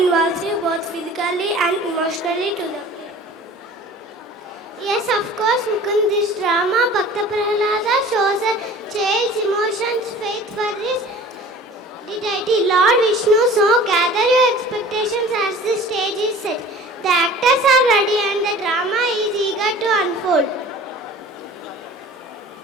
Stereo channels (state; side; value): normal; both; correlation 0.44